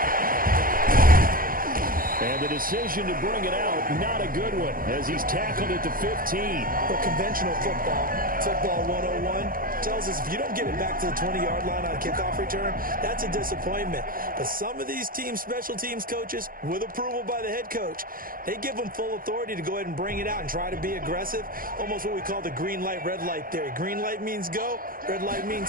And the decision to bring it out, not a good one, as he's tackled at the 15. Well, conventional football 101, tells us if you don't get it back to the 20-yard line on a kickoff return, that's a disappointment. But some of these special teams coaches, with approval by the head coach, they give them full authority to go ahead and bring it out and try to be aggressive, almost what we call the green light, red light theory. Green light means go, red light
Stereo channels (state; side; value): late; left; 0.41 ms